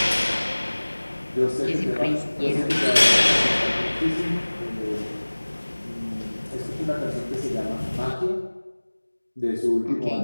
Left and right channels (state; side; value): inverted; both; correlation -1.00